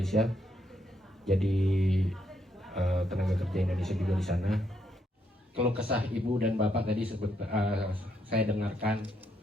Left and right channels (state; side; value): normal; both; correlation 0.76